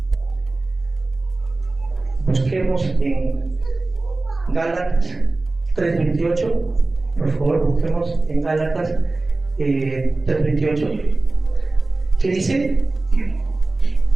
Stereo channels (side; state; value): left; quieter; 3.2 dB